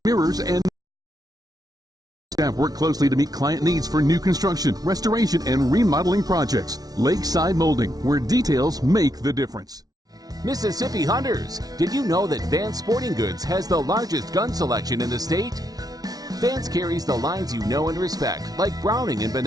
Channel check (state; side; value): late; left; 0.18 ms